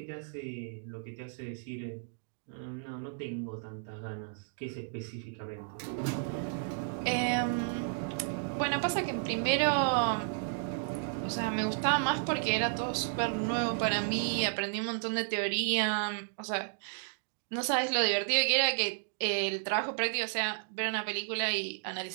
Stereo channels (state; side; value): silent; left; digital silence